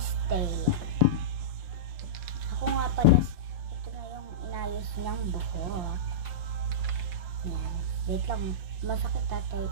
Taya. Ako nga pala, ito na yung inayos niyang buhok. Yan. Wait lang. Masakit tatay,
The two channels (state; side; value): late; left; 5.7 ms